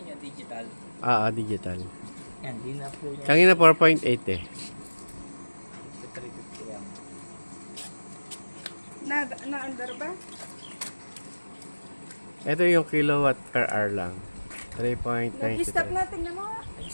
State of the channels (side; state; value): both; inverted; correlation -1.00